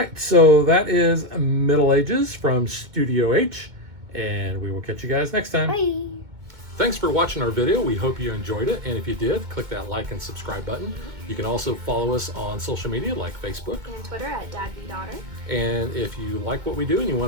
so that is Middle Ages from Studio H, and we will catch you guys next time. Bye. Thanks for watching our video. We hope you enjoyed it, and if you did, click that like and subscribe button. You can also follow us on social media like Facebook And Twitter at DadBeDaughter. and if you like what we do and you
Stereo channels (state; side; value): late; left; 2.1 ms